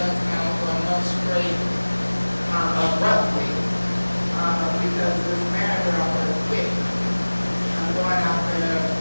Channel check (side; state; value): both; inverted; correlation -1.00